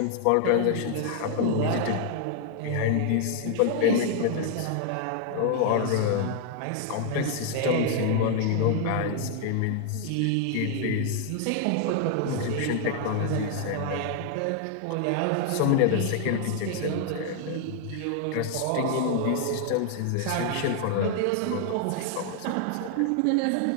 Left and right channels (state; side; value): different; both; correlation 0.00